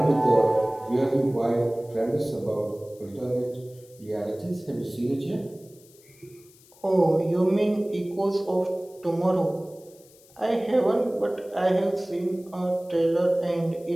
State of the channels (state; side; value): noise; left; hiss, 26 dB below the sound